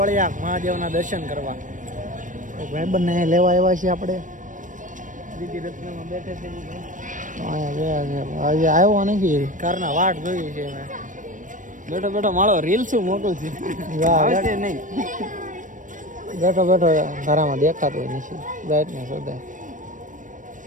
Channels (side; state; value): left; late; 0.38 ms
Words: મહાદેવના દર્શન કરવા. ભાઈબંધને લેવા આવ્યા છીએ આપણે. દીદી રત્નમાં બેઠે છે અહીંયા આજે આવ્યો નથી. કારના વાટ જોઈ છે મેં. બેઠો બેઠો મારો રીલ શું મોટું છે નહીં. બેઠો બેઠો ઘરામાં દેખાતો હોય નથી. બ્રાઇટનેસ વધારે